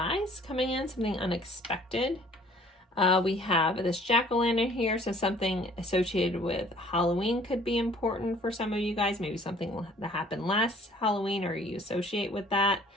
coming in, something unexpected. We have this jack-o'-lantern here, so something associated with Halloween could be important for some of you guys. Maybe something that happened last Halloween or you associate with that.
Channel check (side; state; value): both; normal; correlation 0.55